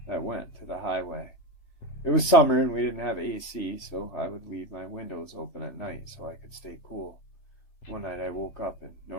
that went to the highway. It was summer, and we didn't have AC, so I would leave my windows open at night so I could stay cool. One night I woke up and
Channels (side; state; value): right; late; 3.4 ms